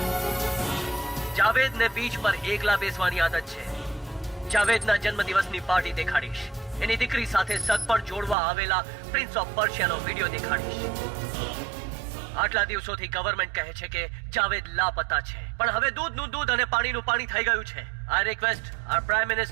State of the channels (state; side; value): drops out; left; at 8.3 s